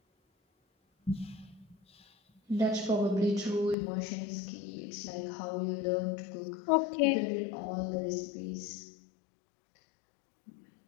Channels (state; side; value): drops out; right; at 3.8 s